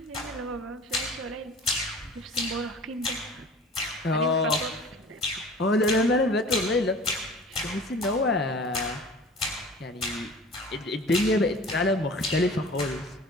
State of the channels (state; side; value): normal; both; correlation 0.43